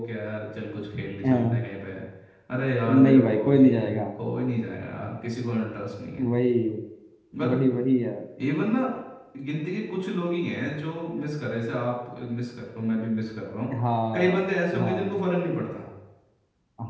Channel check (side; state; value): both; identical; correlation 1.00